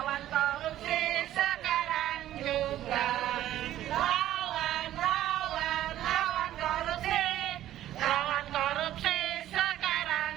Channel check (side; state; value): left; quieter; 13.0 dB